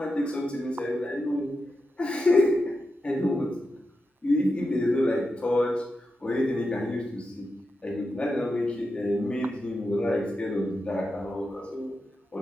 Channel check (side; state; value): both; normal; correlation 0.88